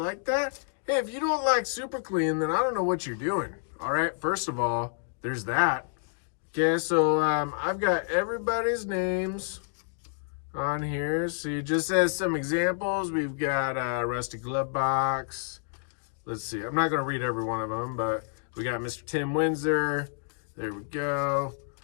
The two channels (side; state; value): right; silent; digital silence